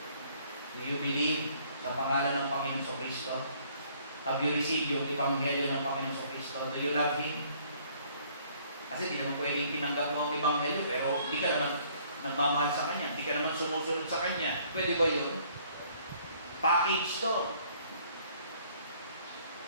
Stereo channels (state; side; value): inverted; both; correlation -0.61